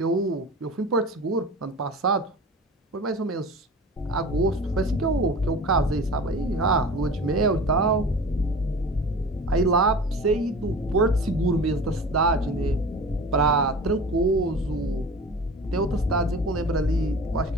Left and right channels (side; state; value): both; normal; correlation 0.37